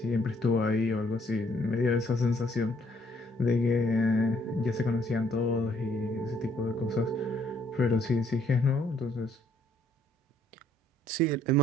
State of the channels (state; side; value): normal; both; correlation 0.66